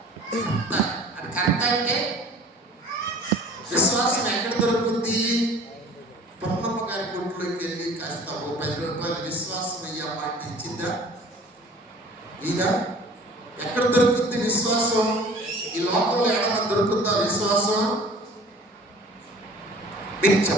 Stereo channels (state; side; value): normal; both; correlation 0.47